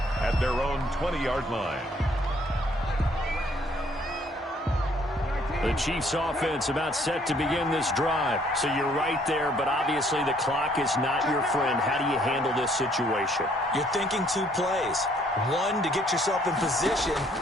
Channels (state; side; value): normal; both; correlation 0.64